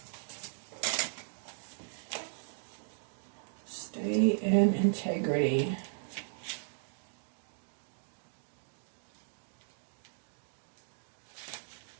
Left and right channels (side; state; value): left; silent; digital silence